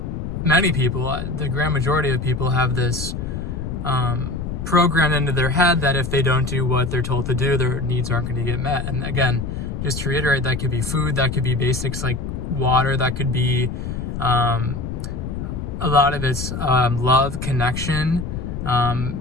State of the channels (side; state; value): left; noise; rumble, 5 dB below the sound